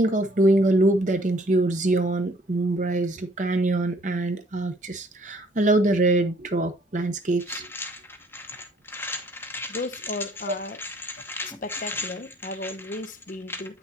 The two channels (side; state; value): both; normal; correlation 0.60